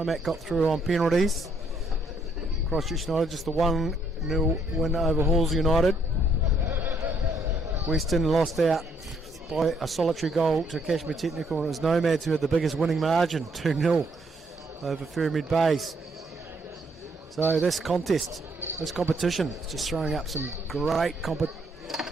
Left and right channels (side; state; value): both; normal; correlation 0.70